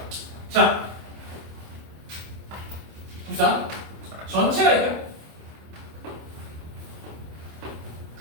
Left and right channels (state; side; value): late; left; 26 ms